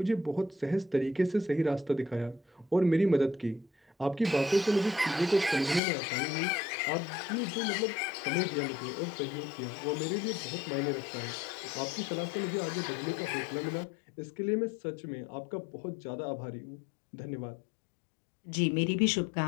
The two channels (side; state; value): right; drops out; at 5.8 s